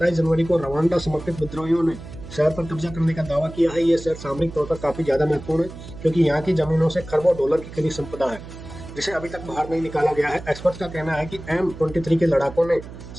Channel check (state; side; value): noise; right; hum, 14 dB below the sound